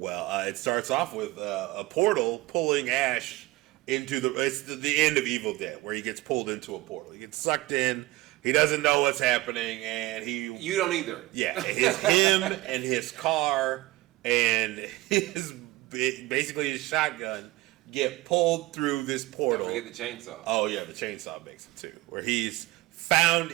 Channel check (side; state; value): left; quieter; 19.0 dB